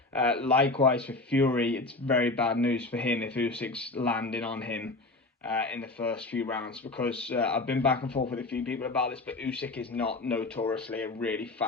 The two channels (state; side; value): quieter; right; 3.1 dB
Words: Likewise for Fury, it's very bad news for him if Usyk's landing on him in the first few rounds, because I've been back and forth with a few people about this, but Usyk is not notoriously a really